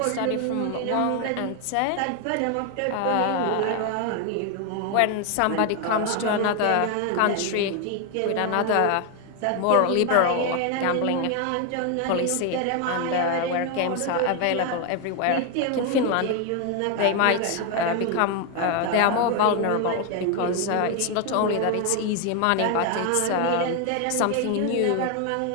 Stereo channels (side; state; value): both; different; correlation 0.01